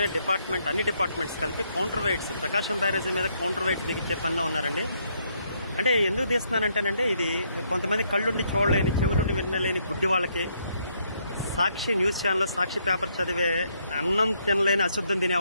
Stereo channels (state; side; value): inverted; both; correlation -0.73